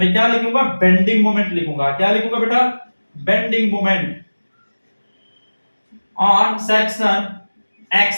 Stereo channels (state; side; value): inverted; both; correlation -1.00